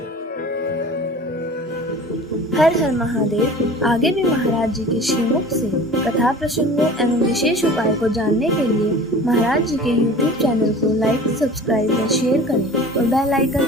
हर हर महादेव। आगे भी महाराज जी के श्रीमुख से कथा प्रसंगों एवं विशेष उपाय को जानने के लिए महाराज जी के YouTube चैनल को लाइक, सब्सक्राइब व शेयर करें और बेल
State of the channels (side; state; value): both; normal; correlation 0.41